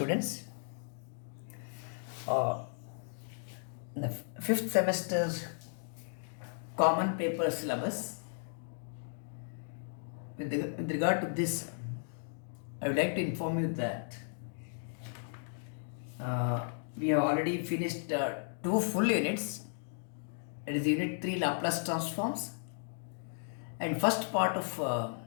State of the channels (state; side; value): silent; right; digital silence